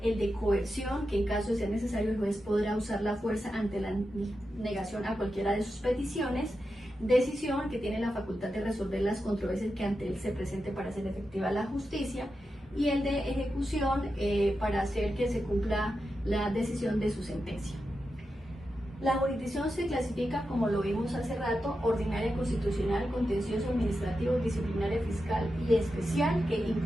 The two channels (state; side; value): normal; both; correlation 0.89